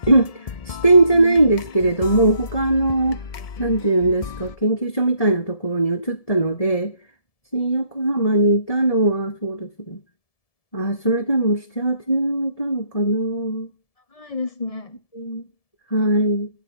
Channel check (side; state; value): right; late; 1.7 ms